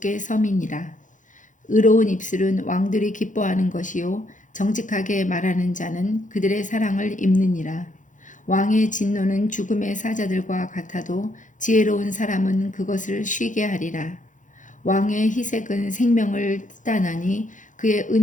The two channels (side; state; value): right; late; 0.37 ms